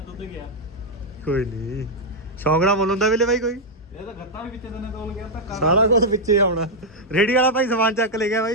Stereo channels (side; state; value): both; normal; correlation -0.02